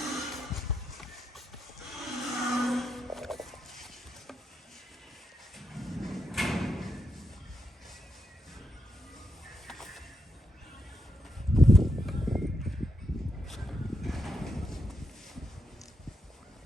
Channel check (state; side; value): normal; both; correlation 0.82